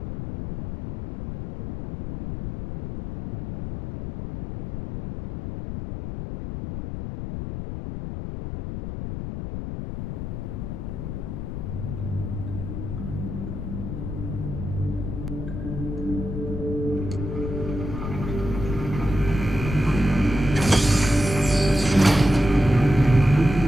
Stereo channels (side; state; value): left; noise; rumble, 6 dB below the sound